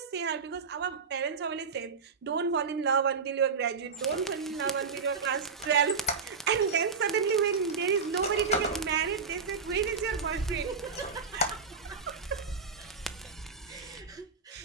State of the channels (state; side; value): quieter; left; 5.2 dB